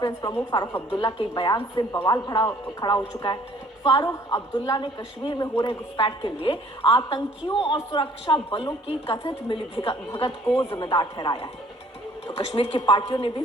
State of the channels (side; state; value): both; normal; correlation 0.57